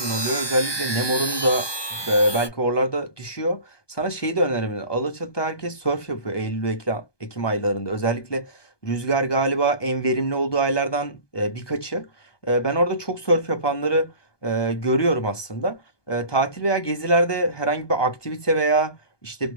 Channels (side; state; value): right; late; 1.2 ms